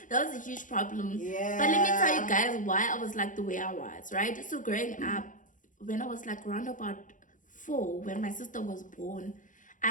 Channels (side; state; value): right; late; 0.38 ms